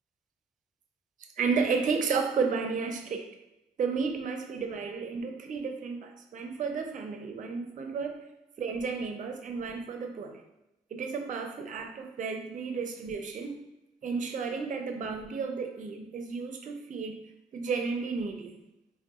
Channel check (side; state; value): left; quieter; 4.8 dB